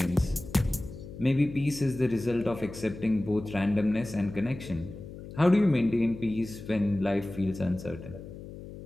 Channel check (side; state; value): left; noise; hum, 13 dB below the sound